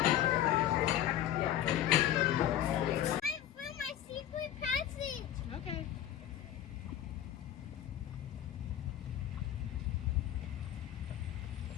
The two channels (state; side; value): quieter; right; 11.6 dB